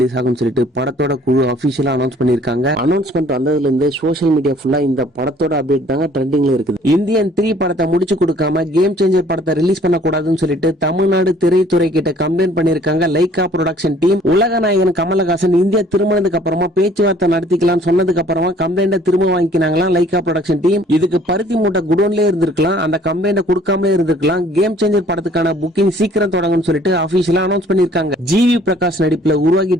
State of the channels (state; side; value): normal; both; correlation 0.56